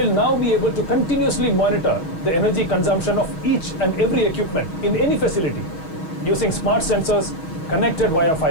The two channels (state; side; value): late; right; 6.3 ms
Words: now be able to continuously monitor the energy consumption of each and every equipment in any facility using smart sensors connected via